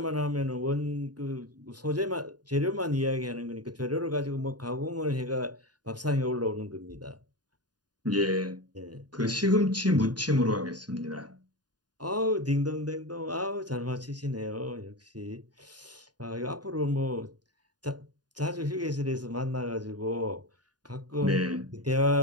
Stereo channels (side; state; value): left; late; 0.69 ms